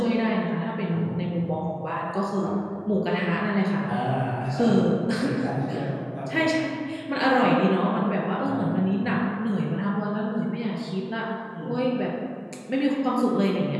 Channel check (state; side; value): identical; both; correlation 1.00